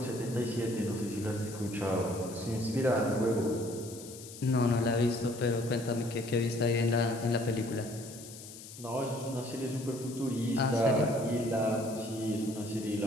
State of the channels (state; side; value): noise; left; hiss, 15 dB below the sound